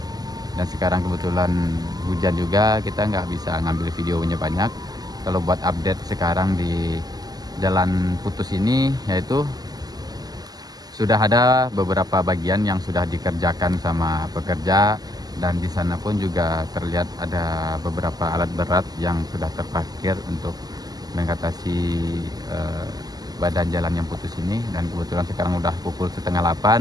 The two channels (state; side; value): late; left; 0.19 ms